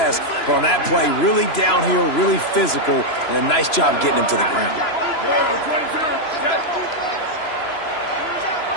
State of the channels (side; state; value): right; late; 3.0 ms